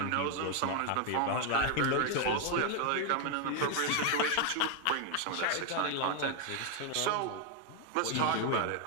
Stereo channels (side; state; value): both; different; correlation 0.00